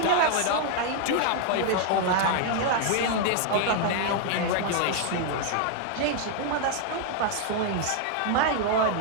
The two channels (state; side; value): different; both; correlation 0.00